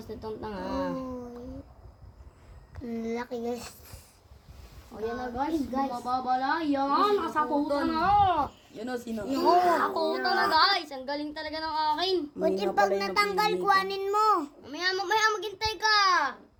nitong tanga. Laki guys. O yan na guys. Mababala. Yan. Nasakutan na. Yun o, sino? Nasakutan na guys. Ang galing talaga ng akin. Buti pag natanggal, kuhanin mo. Mamaya maghintay ka.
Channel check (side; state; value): both; identical; correlation 1.00